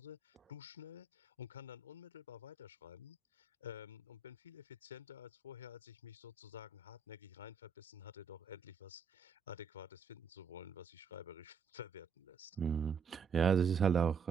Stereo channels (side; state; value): left; quieter; 5.7 dB